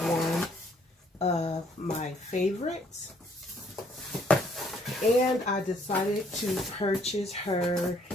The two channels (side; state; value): both; normal; correlation 0.65